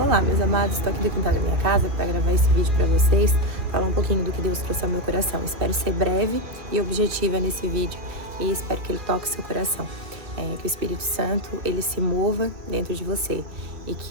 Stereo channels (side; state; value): left; late; 2.3 ms